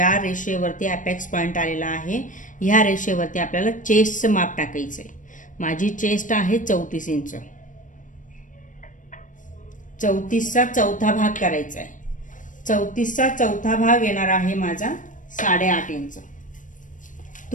रेषेवरती अपेक्स पॉइंट आलेला आहे ह्या रेषेवरती आपल्याला चेस्टचं माप टाकायचंय. माझी चेस्ट आहे 34 इंच. 34चा चौथा भाग करायचा आहे. 34चा चौथा भाग येणार आहे माझा 8.5 इंच.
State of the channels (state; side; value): late; right; 0.37 ms